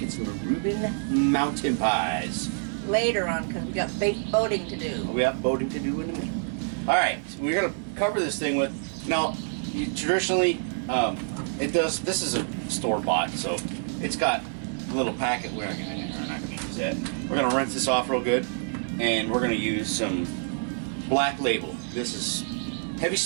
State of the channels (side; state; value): left; silent; 60 dB below the other